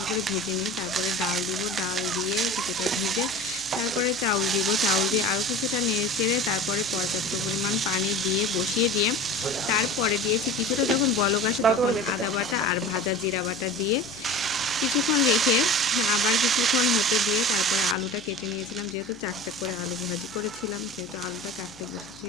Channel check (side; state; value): left; noise; hum, 25 dB below the sound